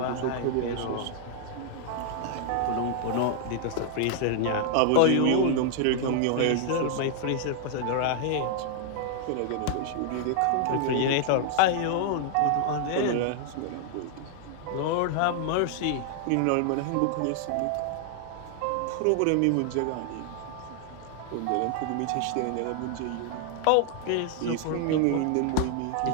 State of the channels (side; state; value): both; different; correlation 0.00